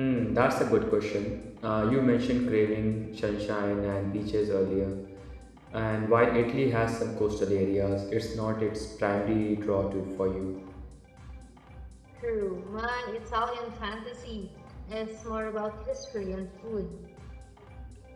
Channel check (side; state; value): both; identical; correlation 1.00